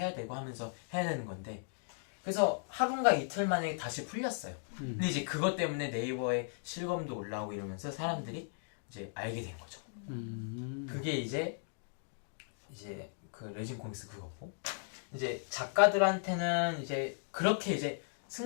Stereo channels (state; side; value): silent; right; digital silence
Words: 되고 하면서 해야 되는 건데 그래서 하루인가 이틀 만에 다시 풀렸어요. 근데 이제 그것 때문에 네이버에 실검도 올라오고 이러면서 사람들이 이제 알게 된 거죠. 그게 이제 그 레진 코믹스 그거고 이제 작가들한테는 이제 그렇게 이제